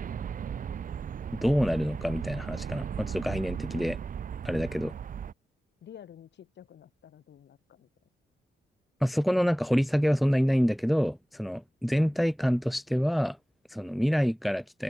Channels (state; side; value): normal; both; correlation 0.98